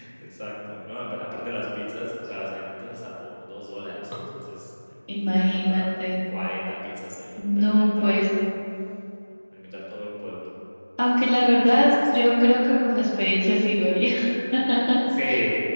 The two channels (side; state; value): both; inverted; correlation -1.00